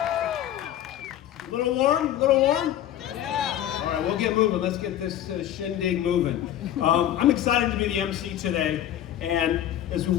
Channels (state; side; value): quieter; right; 11.7 dB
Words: A little warm? A little warm? Yeah. All right, we'll get moving. Let's get this shindig moving. I'm excited to be the MC today, and as we